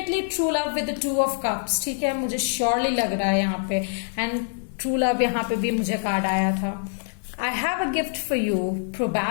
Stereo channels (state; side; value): silent; right; digital silence